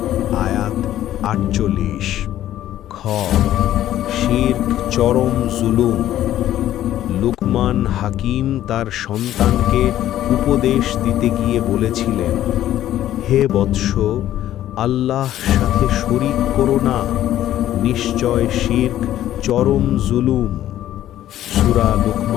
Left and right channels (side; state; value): right; quieter; 12.7 dB